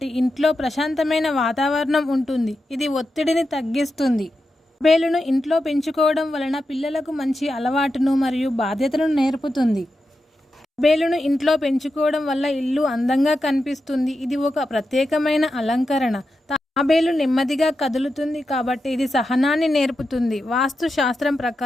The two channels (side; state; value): both; normal; correlation 0.89